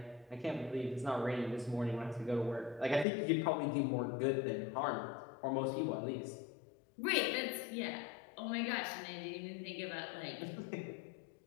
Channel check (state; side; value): drops out; right; at 3.1 s